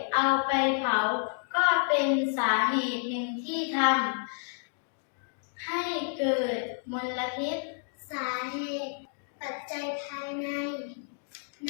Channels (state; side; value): silent; right; digital silence